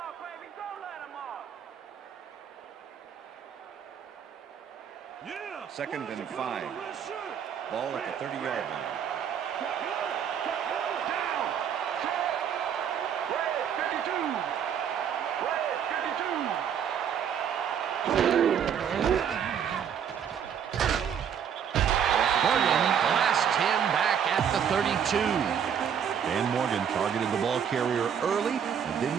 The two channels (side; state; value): left; quieter; 8.2 dB